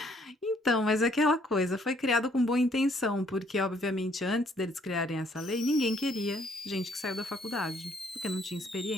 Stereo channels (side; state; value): both; normal; correlation 0.65